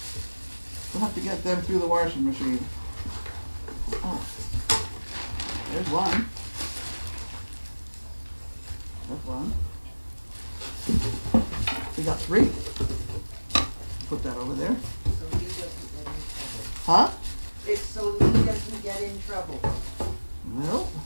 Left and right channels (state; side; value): inverted; both; correlation -1.00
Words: We'll have to get them through the washing machine. Oh. There's one. That's one. We got 3. Put that over there. So he doesn't get in trouble. Huh? It's so he doesn't get in trouble.